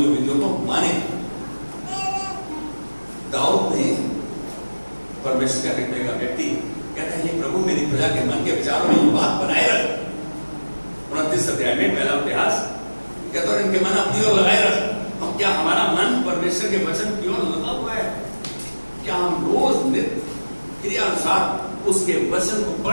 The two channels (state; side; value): inverted; both; correlation -1.00